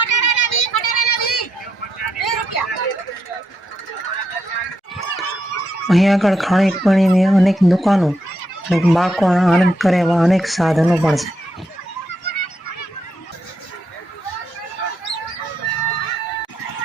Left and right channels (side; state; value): both; normal; correlation 0.80